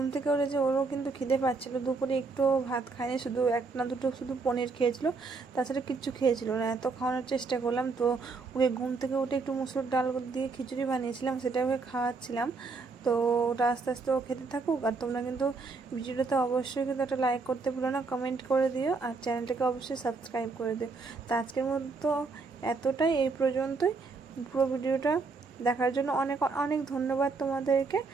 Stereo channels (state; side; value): quieter; left; 4.2 dB